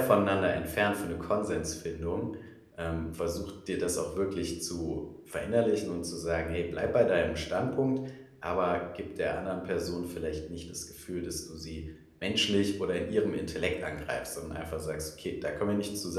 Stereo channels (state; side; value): identical; both; correlation 1.00